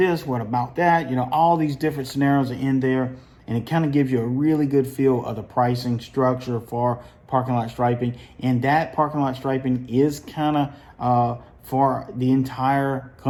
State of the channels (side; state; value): both; identical; correlation 1.00